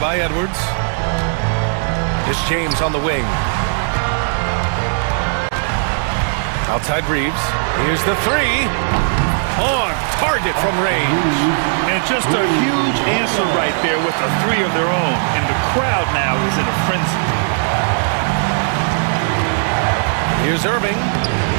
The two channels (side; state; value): left; silent; digital silence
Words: by Edwards. It's James on the wing. Outside Reeves. Here's the 3. On target from range. And just a huge answer right there with a 3 of their own. And the crowd now is in a frenzy. Here's Irving.